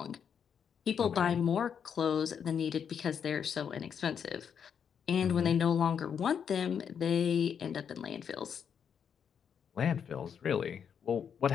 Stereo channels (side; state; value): right; quieter; 7.5 dB